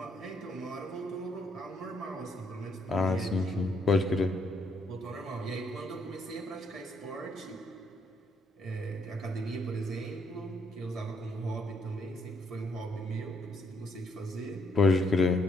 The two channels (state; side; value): normal; both; correlation 0.72